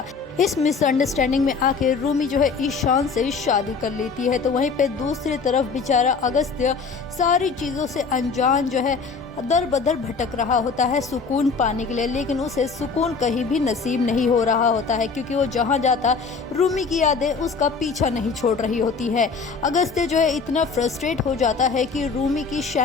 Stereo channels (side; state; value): right; quieter; 5.0 dB